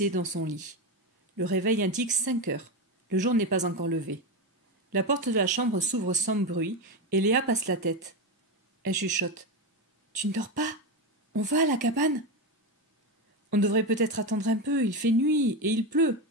dans son lit. Le réveil indique 5 heures. Le jour n'est pas encore levé. La porte de la chambre s'ouvre sans bruit et Léa passe la tête. Elle chuchote. « Tu ne dors pas? On va à la cabane ?»« On devrait peut-être attendre un peu, il fait nuit et il pleut.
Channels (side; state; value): both; normal; correlation 0.14